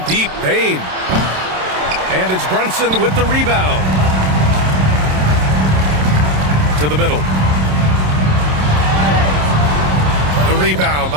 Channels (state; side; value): late; left; 27 ms